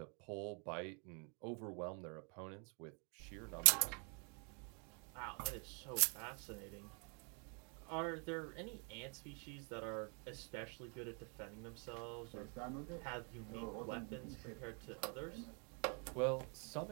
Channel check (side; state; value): left; quieter; 37.7 dB